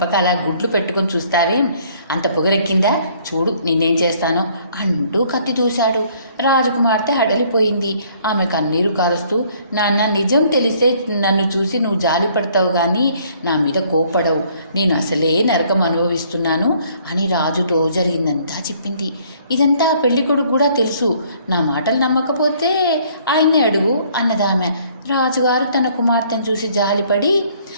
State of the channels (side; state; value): both; inverted; correlation -0.61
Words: అలా గుడ్లు పెట్టుకొని చూస్తావేం, అంత పొగరెక్కిందా, చూడు నిన్నేం చేస్తానో అంటూ కత్తి దూశాడు. రాజకుమార్తె హడలిపోయింది. ఆమె కన్నీరు కారుస్తూ, నాన్న నీ నిజం తెలిస్తే నన్ను చూసి నువ్వు జాలి పడతావు కానీ నా మీద కోప్పడవు. నేను అసలే నరకం అనుభవిస్తున్నాను అని రాజుతో జరిగిందంతా చెప్పింది. ఇదంతా పెళ్ళికొడుకు కూడా తెలుసు. నా మాటలు నమ్మకపోతే ఆయన్నే అడుగు అన్నదామె. రాజుగారు తన కుమార్తెను చూసి జాలిపడి,